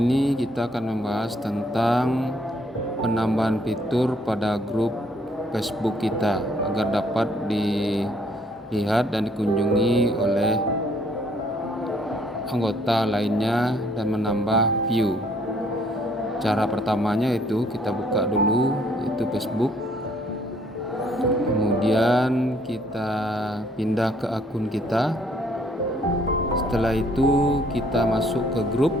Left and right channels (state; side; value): normal; both; correlation 0.65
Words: kita akan membahas tentang penambahan fitur pada grup Facebook kita agar dapat dilihat dan dikunjungi oleh anggota lainnya dan menambah view. Cara pertamanya itu kita buka dulu itu Facebook. Kemudian kita pindah ke akun kita. Setelah itu kita masuk ke grup,